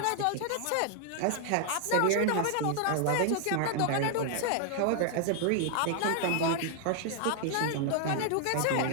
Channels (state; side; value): different; both; correlation 0.00